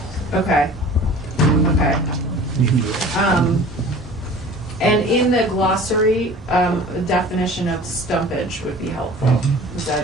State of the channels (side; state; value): both; normal; correlation 0.43